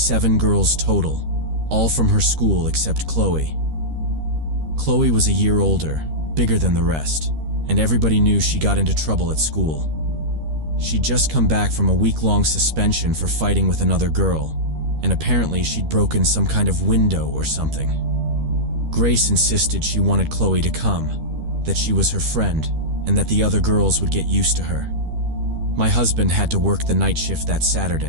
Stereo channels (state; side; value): late; left; 13 ms